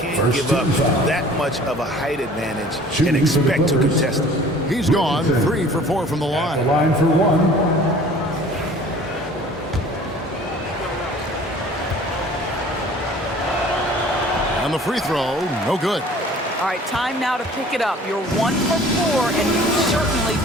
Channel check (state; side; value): normal; both; correlation 0.49